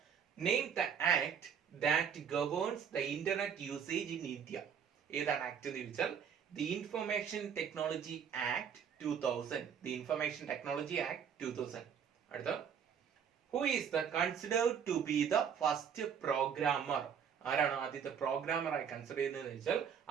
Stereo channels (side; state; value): left; quieter; 7.6 dB